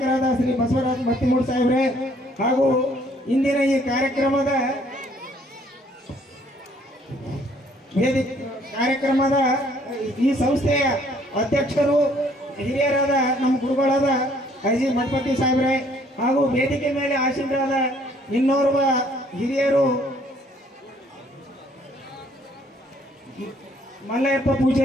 ಶ್ರೀ ಬಸವರಾಜ್ ಮತ್ತಿಮೂಡ್ ಸಾಹೇಬ್ರೆ ಹಾಗೂ ಇಂದಿನ ಈ ಕಾರ್ಯಕ್ರಮದ ಈ ಸಂಸ್ಥೆಯ ಅಧ್ಯಕ್ಷರು ಹಿರಿಯರಾದ ನಮ್ಮ ಗುರುಗಳಾದ ಐಜಿ ಮಠಪತಿ ಸಾಹೇಬ್ರೆ ಹಾಗೂ ವೇದಿಕೆ ಮೇಲೆ ಆಸೀನರಾದ ಇನ್ನೋರ್ವ ಹಿರಿಯರು ಮಲ್ಲಯ್ಯಪ್ಪ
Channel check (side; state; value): both; normal; correlation 0.62